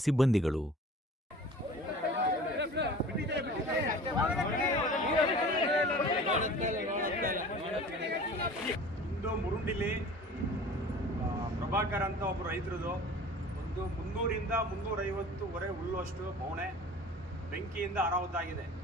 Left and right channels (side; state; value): both; normal; correlation 0.43